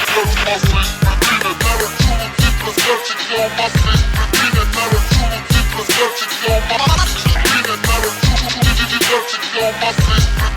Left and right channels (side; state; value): both; identical; correlation 1.00